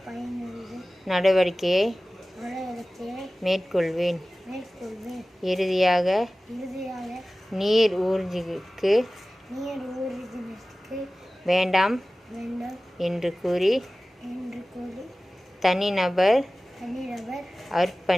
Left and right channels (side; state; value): both; normal; correlation 0.97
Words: நடவடிக்கையை மேற்கொள்வேன். இறுதியாக நீர் ஊர்திக்கு வேண்டாம் என்று கூறி தனிநபர்